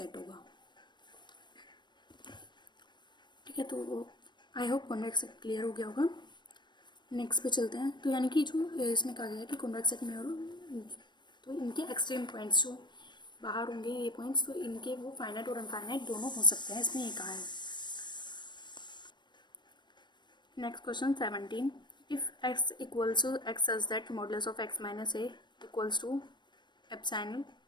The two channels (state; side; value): late; right; 0.22 ms